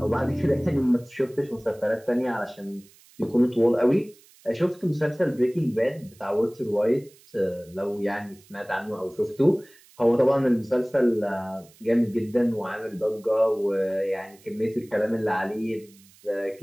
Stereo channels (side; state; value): right; noise; hiss, 27 dB below the sound